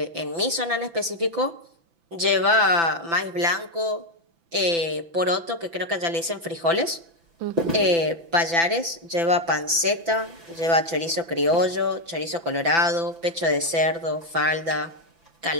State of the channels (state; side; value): late; left; 6.0 ms